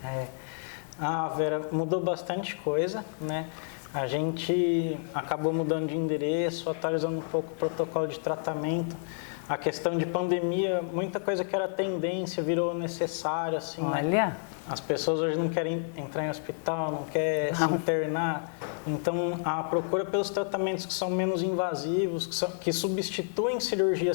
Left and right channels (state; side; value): silent; right; 58 dB below the other